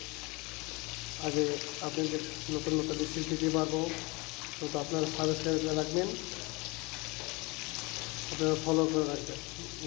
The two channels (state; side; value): quieter; right; 26.0 dB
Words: আগে আপনাদের নতুন নতুন রেসিপি দিতে পারবো, তো আপনারা সাবস্ক্রাইব করে রাখবেন, আপনারা ফলো করে রাখবেন।